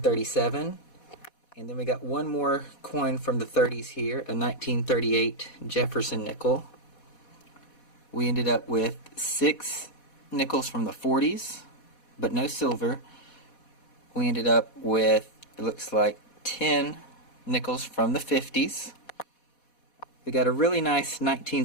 and then we got one more coin from the 30s here, a 1938 Jefferson nickel. We ended up with 6 nickels from the 40s, but no silver. We ended up with, it looks like, 10 nickels from the 50s. We got a really nice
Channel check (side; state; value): right; late; 4.1 ms